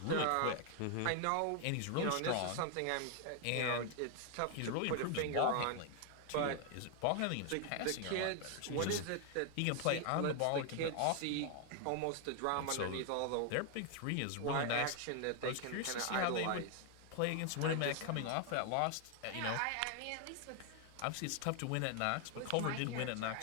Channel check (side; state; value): both; different; correlation 0.00